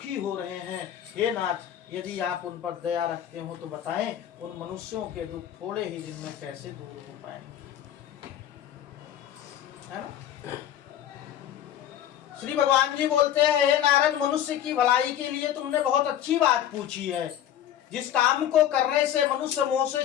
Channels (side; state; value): right; quieter; 10.8 dB